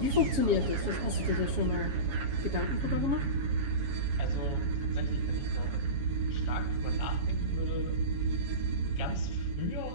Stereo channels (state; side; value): late; left; 7.2 ms